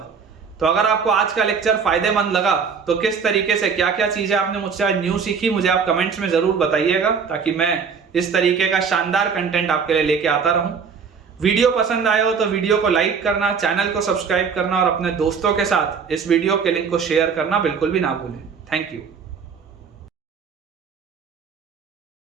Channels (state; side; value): quieter; left; 6.0 dB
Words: तो अगर आपको आज का लेक्चर फायदेमंद लगा तो किस तरीके से क्या क्या चीजें आपने मुझसे आज न्यू सीखी, मुझे आप कमेंट्स में जरूर बताइएगा, ताकि मैं इस तरीके का शानदार कंटेंट आपके लिए लेके आता रहूं। वीडियो पसंद आया हो तो वीडियो को लाइक करना, चैनल को सब्सक्राइब करना, और अपने दोस्तों के साथ इस वीडियो के लिंक को शेयर करना बिल्कुल भी ना भूलें। Thank you.